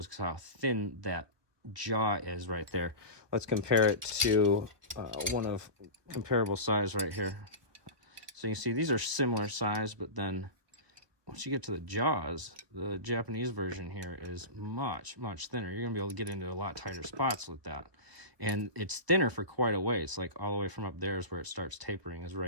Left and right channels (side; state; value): left; late; 1.2 ms